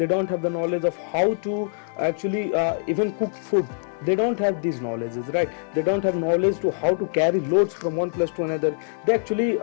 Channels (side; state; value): right; silent; 63 dB below the other